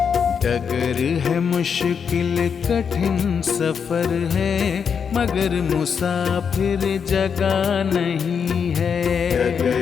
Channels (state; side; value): quieter; right; 6.7 dB